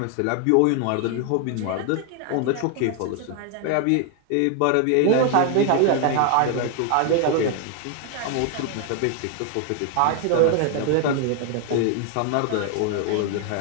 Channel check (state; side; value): different; both; correlation 0.00